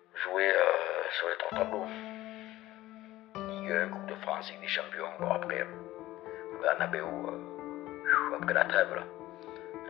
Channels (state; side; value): quieter; right; 16.3 dB